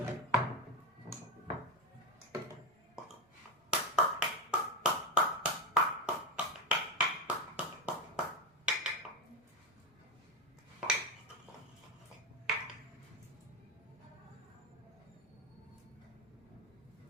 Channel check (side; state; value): both; normal; correlation 0.15